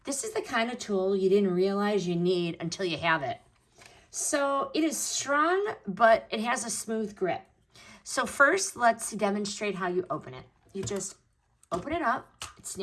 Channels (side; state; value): both; identical; correlation 1.00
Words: This is the kind of tool you didn't realize you need until you have it. So it is strong, but it has a smooth grip. So first, let's demonstrate how you open it. You just open it up, it